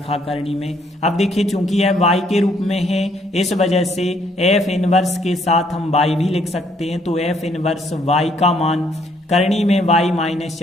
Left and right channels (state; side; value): normal; both; correlation 0.68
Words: करनी में। अब देखिए चूंकि यह y के रूप में है, इस वजह से f इनवर्स के साथ हम y भी लिख सकते हैं, तो f इनवर्स y का मान करनी में